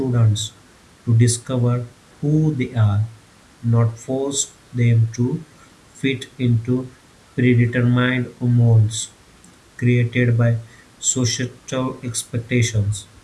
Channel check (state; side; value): identical; both; correlation 1.00